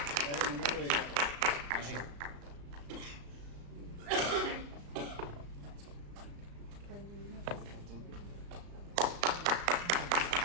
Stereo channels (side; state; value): left; late; 35 ms